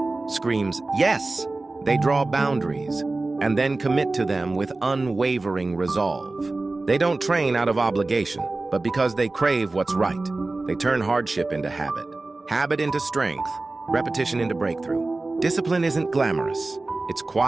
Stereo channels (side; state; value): left; quieter; 3.2 dB